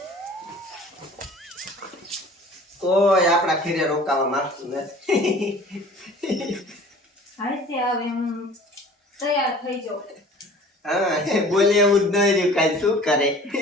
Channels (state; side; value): normal; both; correlation 0.46